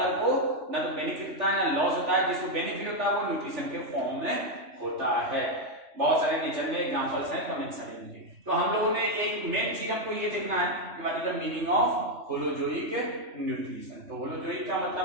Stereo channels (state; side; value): late; left; 3.4 ms